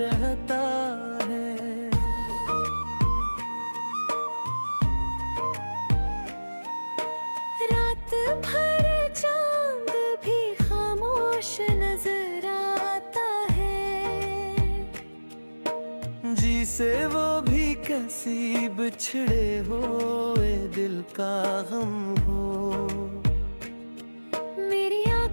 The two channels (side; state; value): both; inverted; correlation -1.00